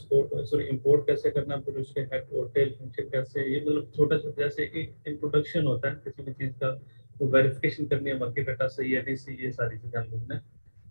sorry import कैसे करना, फिर उसके हेड और टेल फंक्शन कैसे, ये मतलब छोटा छोटा जैसे एक इंट्रोडक्शन होता है किसी भी चीज का, तो वेरिफिकेशन करनी है बाकी डाटा सही है नहीं सही, ये सारी चीजें हम लोगों ने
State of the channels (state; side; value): inverted; both; correlation -1.00